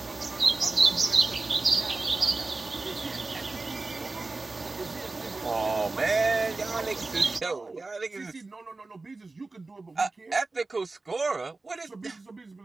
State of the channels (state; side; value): quieter; left; 3.5 dB